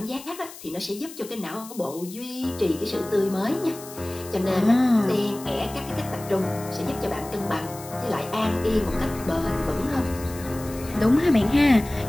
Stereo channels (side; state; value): left; noise; hiss, 16 dB below the sound